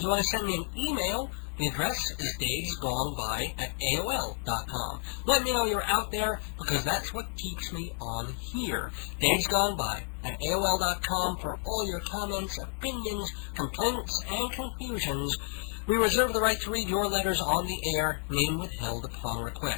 want to send me an email, the address is davesgoneby@aol.com. Let me know you're out there, because that's what keeps me on here. davesgoneby@aol.com for all your comments, opinions, complaints, and confusions. We reserve the right to read your letters on the air, name withheld upon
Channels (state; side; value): silent; right; 57 dB below the other